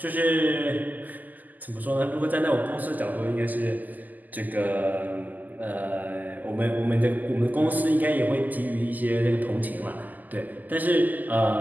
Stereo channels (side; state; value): left; late; 0.083 ms